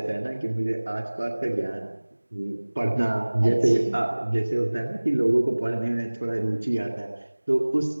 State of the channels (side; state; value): both; inverted; correlation -1.00